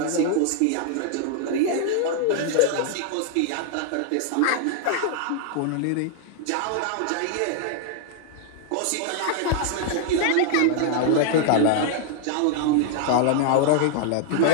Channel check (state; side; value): different; both; correlation 0.00